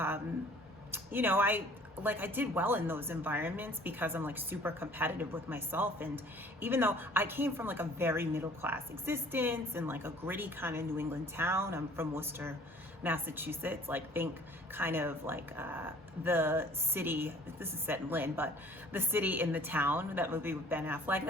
you know, I did well in those environments because I'm like super competitive with myself. And even though I came from like a very middle class existence and like a gritty kind of New England town, I'm from Worcester, Massachusetts, like think kind of like the city, this is set in Lynn, but the city in the town, that movie with Ben Affleck,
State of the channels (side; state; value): both; normal; correlation 0.53